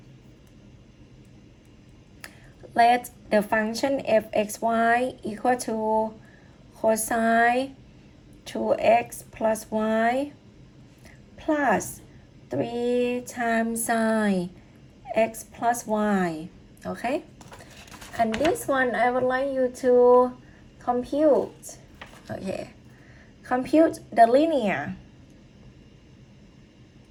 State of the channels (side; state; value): both; identical; correlation 1.00